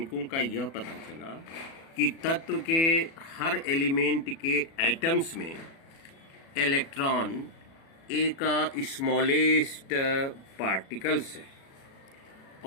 का यह पता चला कि तत्व के हर एलिमेंट के एटम्स में इलेक्ट्रॉन एक स्मॉलेस्ट पार्टिकल्स है।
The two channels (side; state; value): right; late; 37 ms